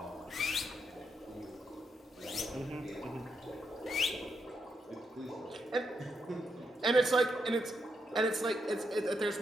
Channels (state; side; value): normal; both; correlation 0.81